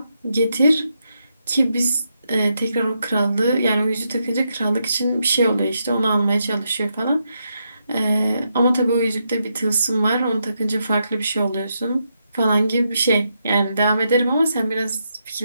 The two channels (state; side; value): inverted; both; correlation -0.82